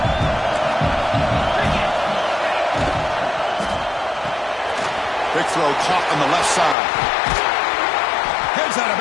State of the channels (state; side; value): drops out; right; at 6.8 s